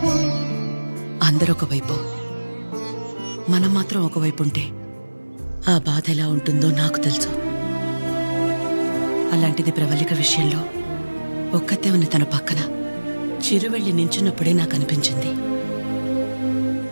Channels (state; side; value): inverted; both; correlation -1.00